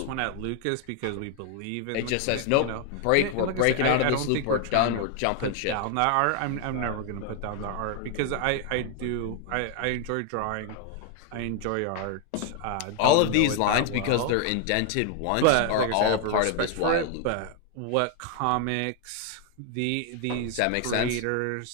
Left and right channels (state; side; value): different; both; correlation 0.00